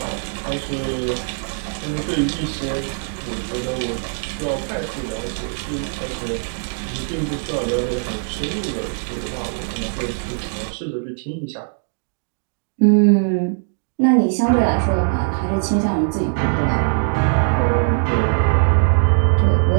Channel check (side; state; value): left; silent; digital silence